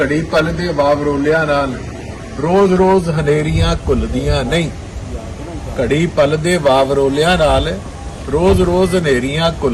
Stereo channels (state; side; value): identical; both; correlation 1.00